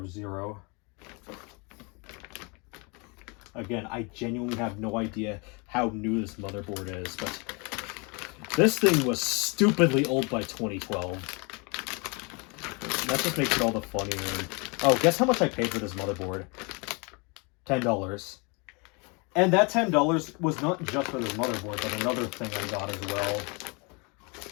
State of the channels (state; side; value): quieter; right; 30.9 dB